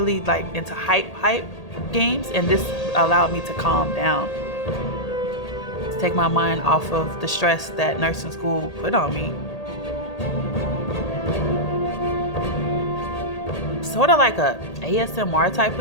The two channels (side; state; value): right; late; 1.8 ms